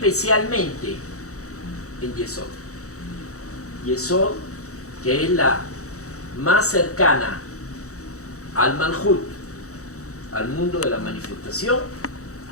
en Yesod. Yesod, que es la más cercana al Malhut, al mundo de la manifestación,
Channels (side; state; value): right; late; 0.65 ms